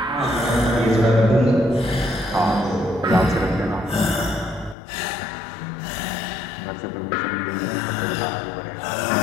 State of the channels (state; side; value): drops out; right; at 4.8 s